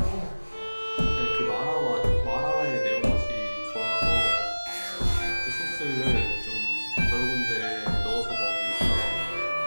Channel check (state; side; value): inverted; both; correlation -1.00